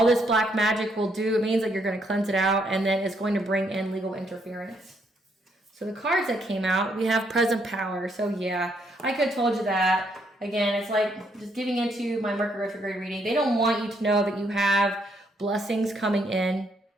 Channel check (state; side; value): normal; both; correlation 0.73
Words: this black magic will do, it means that you're going to cleanse it out, and then it's going to bring in legal interference. So the cards that came out, we have present power. So yeah, I could have told you that. Again, it's like just giving into my Mercury retrograde reading. They don't want you to know that you have blessings coming in.